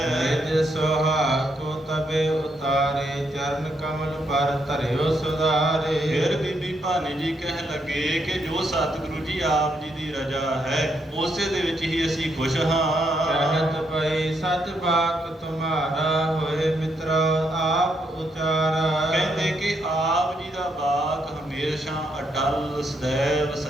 ਨਿਜ ਸੁਹਾਗ ਕੋ ਤਬੇ ਉਤਾਰੇ, ਚਰਨ ਕਮਲ ਪਰ ਧਰਿਓ ਸੁਧਾਰੇ। ਫਿਰ ਬੀਬੀ ਭਾਨੀ ਜੀ ਕਹਿਣ ਲੱਗੇ ਕਿ ਜੋ ਸਤਿਗੁਰੂ ਜੀ ਆਪ ਜੀ ਦੀ ਰਜ਼ਾ ਹੈ, ਉਸੇ ਦੇ ਵਿੱਚ ਹੀ ਅਸੀਂ ਖੁਸ਼ ਹਾਂ। ਕਹਿਤ ਪਈ ਸਚ ਬਾਕ ਤੁਮਾਰਾ, ਹੋਏ ਮਿੱਤਰ ਆਪ ਉਚਾਰਾ। ਕਹਿੰਦੇ ਕਿ ਆਪ ਜੀ ਦਾ ਬਾਕ ਹਮੇਸ਼ਾ ਅਟਲ ਸदैव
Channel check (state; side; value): normal; both; correlation 0.77